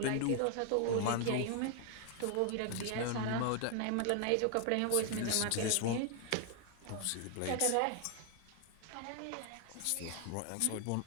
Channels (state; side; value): different; both; correlation 0.00